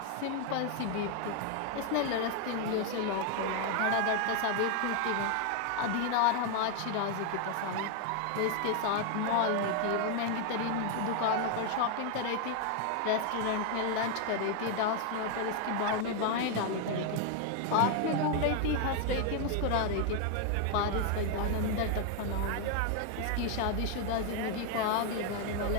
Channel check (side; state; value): both; different; correlation 0.01